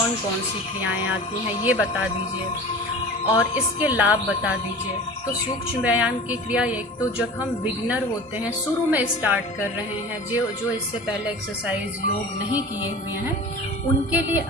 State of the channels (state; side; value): normal; both; correlation 0.37